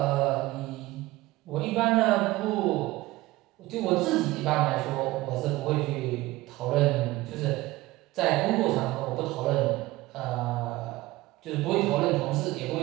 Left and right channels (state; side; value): quieter; left; 18.7 dB